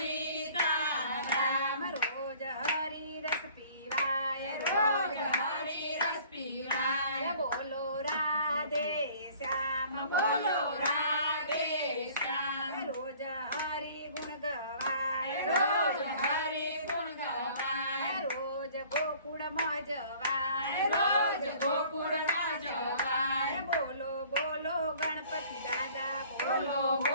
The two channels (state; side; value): inverted; both; correlation -0.52